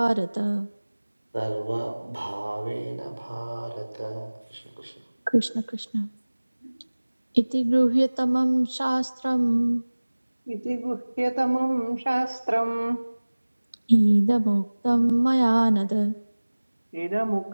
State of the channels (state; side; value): inverted; both; correlation -1.00